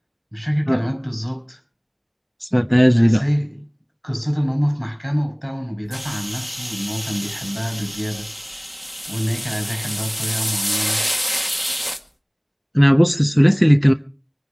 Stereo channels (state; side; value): identical; both; correlation 1.00